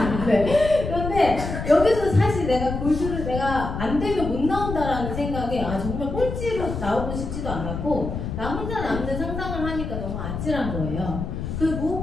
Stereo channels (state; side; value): noise; left; rumble, 5 dB below the sound